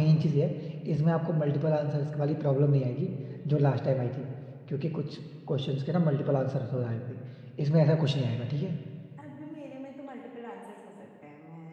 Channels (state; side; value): identical; both; correlation 1.00